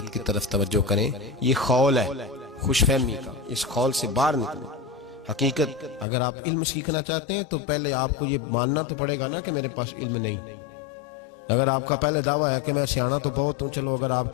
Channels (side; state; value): right; drops out; at 6.1 s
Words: کی طرف توجہ کریں. یہ خول ہے خوش فہمی کا، اس خول سے باہر نکلیں. حقیقت اگر آپ علم سیکھنا چاہتے ہیں تو پہلے آپ کو یہ ماننا تو پڑے گا نا کہ میرے پاس علم نہیں. اگر آپ کا پہلے دعویٰ ہے کہ میں سیانا تو بہت ہوں، چلو اگر آپ